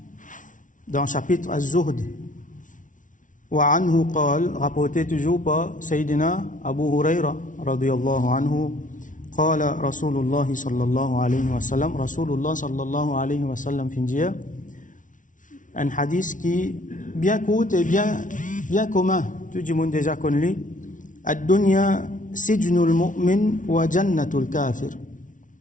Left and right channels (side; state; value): right; late; 0.38 ms